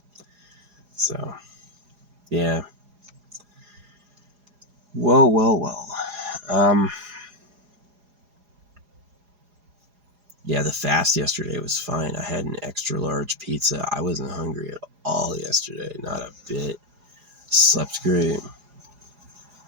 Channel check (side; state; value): left; late; 4.8 ms